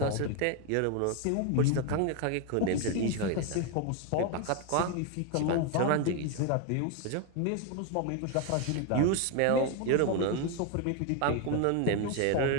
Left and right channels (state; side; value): different; both; correlation 0.01